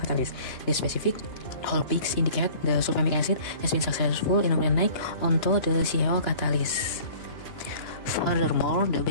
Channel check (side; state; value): right; late; 2.9 ms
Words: catalyst. The specific Hall peaks indicate the sulfamic acid has been successful in organic onto the CaO catalyst. Furthermore, the